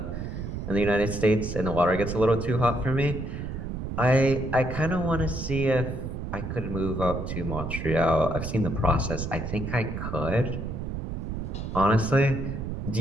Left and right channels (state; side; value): noise; right; rumble, 5 dB below the sound